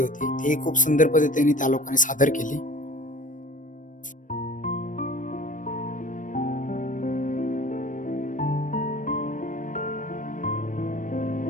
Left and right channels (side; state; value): right; late; 0.38 ms